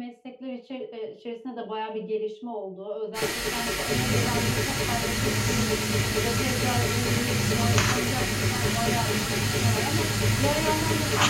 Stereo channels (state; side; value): identical; both; correlation 1.00